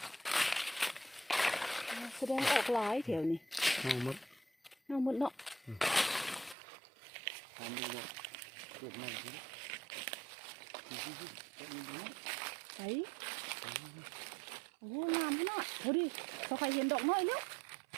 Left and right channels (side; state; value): left; drops out; at 6.6 s